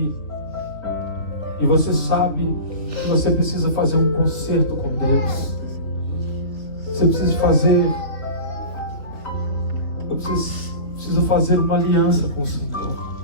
e você sabe que você precisa fazer um concerto com Deus. Você precisa fazer, precisa fazer uma aliança com o Senhor.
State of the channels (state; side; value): late; right; 3.2 ms